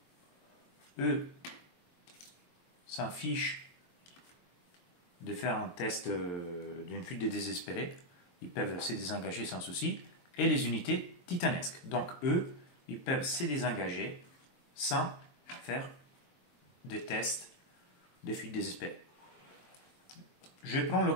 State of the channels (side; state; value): right; late; 23 ms